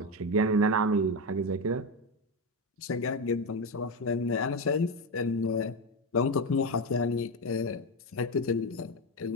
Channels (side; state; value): both; normal; correlation 0.12